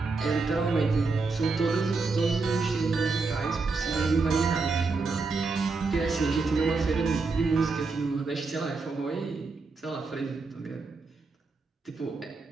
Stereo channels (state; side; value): quieter; left; 4.1 dB